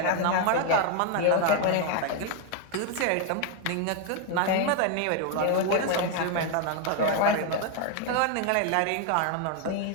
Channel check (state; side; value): different; both; correlation 0.01